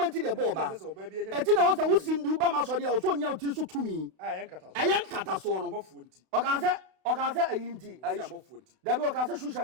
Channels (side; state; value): left; late; 32 ms